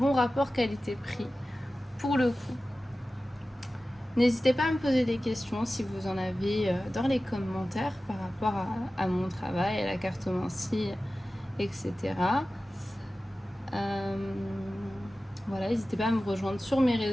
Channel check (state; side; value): normal; both; correlation 0.95